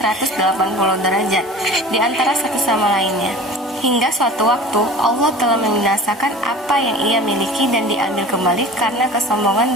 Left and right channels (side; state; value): both; normal; correlation 0.39